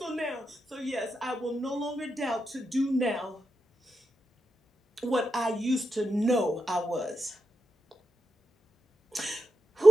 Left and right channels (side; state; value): both; normal; correlation 0.86